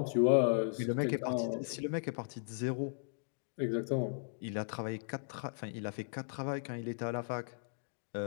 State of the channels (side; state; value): right; silent; digital silence